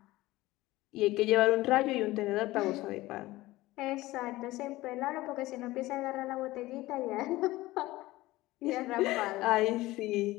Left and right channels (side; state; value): right; quieter; 18.2 dB